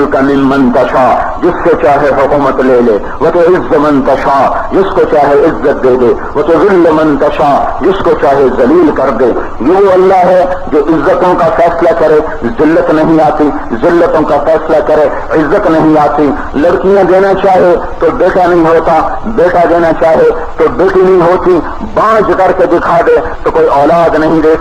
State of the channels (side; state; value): both; identical; correlation 1.00